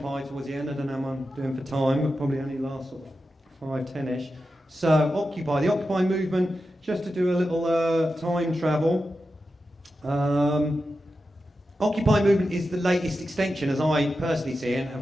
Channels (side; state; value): both; normal; correlation 0.91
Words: towards the end. I don't know how I'm doing for time, but probably only last sort of 5-10ish. So Occupy, the Occupy movement, just to do a little time travel. Occupy movement is the latest extension, as I personally see it,